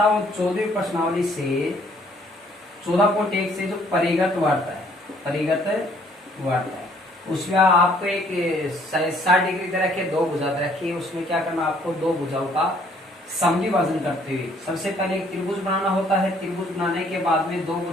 वो 14वीं प्रश्नावली से 14.1 से जो परिगत वर्त है उसमें आपको एक 60 डिग्री दे रखी है, 2 भुजा दे रखी है। उसमें क्या करना, आपको 2 भुजाओं का समद्विभाजन करते हुए सबसे पहले एक त्रिभुज बनाना होता है। त्रिभुज बनाने के बाद में 2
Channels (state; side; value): normal; both; correlation 0.62